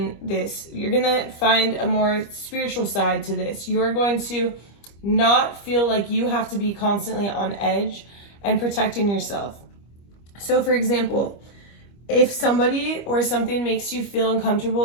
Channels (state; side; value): late; right; 25 ms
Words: this. You're going to find a more spiritual side to this. You're going to not feel like you have to be constantly on edge and protecting yourself. So for example, if somebody or something makes you feel uncomfortable